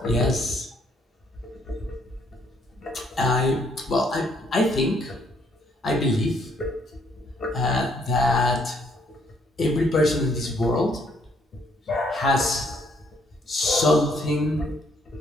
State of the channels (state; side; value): normal; both; correlation 0.68